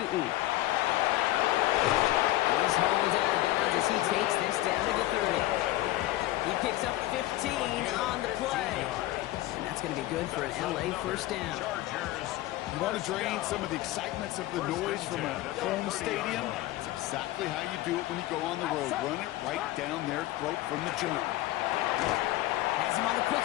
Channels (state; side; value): quieter; right; 16.3 dB